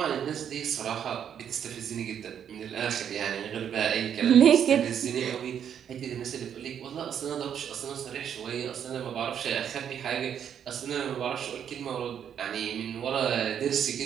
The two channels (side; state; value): left; quieter; 8.7 dB